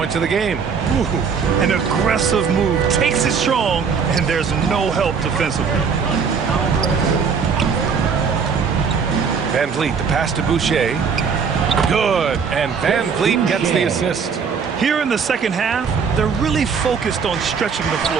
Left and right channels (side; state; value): left; quieter; 6.0 dB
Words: of the game. Ooh, an aggressive move. Takes it strong, and there's no help defensively. Van Vliet, the pass to Boucher. Good. And Van Vliet gets the assist. Here in the second half, they're really focused on stretching the